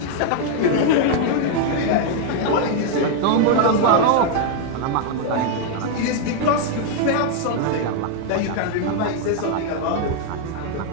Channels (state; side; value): different; both; correlation 0.00